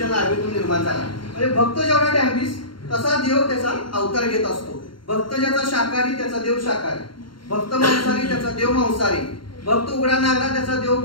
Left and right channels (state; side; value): late; right; 0.73 ms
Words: नाभीतून निर्माण झाला. म्हणजे भक्त जेवढा डॅम्बिस तसा देव त्याचा अवतार घेत असतो. भक्त ज्याचा शाकाहारी त्याचा देव शाकाहारी, भक्त मांसाहारी त्याचा देव मांसाहारी, भक्त उघडा नागरा त्याचा देव